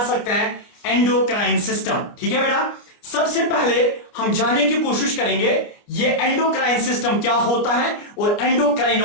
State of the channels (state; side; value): late; right; 29 ms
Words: सकते हैं एंडोक्राइन सिस्टम। ठीक है बेटा, सबसे पहले हम जानने की कोशिश करेंगे ये एंडोक्राइन सिस्टम क्या होता है और